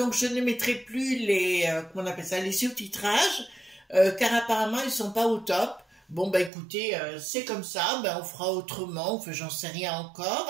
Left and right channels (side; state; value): left; drops out; at 6.5 s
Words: je ne mettrai plus les, comment on appelle ça, les sous-titrages, car apparemment ils sont pas au top. Bon écoutez, c'est comme ça, on fera autrement, enfin j'en sais rien